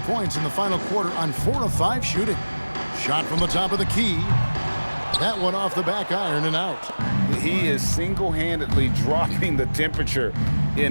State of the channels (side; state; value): both; inverted; correlation -1.00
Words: points in the final quarter on 4 of 5 shooting. Shot from the top of the key. That one off the back iron and out. He is single-handedly dropping the temperature